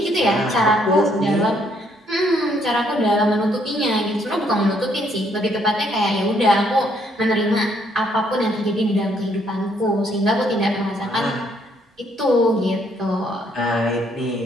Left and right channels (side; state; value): both; normal; correlation 0.69